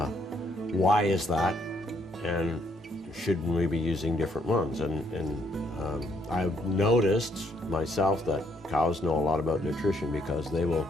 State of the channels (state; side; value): normal; both; correlation 0.70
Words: is that? And shouldn't we be using different ones? And I've noticed myself that cows know a lot about nutrition, because they'll